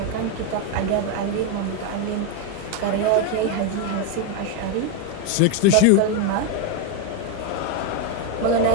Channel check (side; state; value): both; different; correlation 0.02